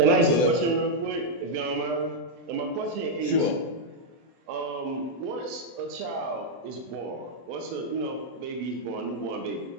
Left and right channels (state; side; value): late; left; 24 ms